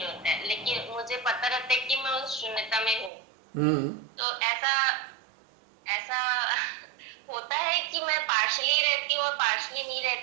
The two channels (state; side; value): drops out; left; at 3.1 s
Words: होता है, लेकिन मुझे पता रहता है कि मैं उस शून्यता में हूँ। हम्म। तो ऐसा ऐसा होता है कि मैं पार्शली रहती हूँ और पार्शली नहीं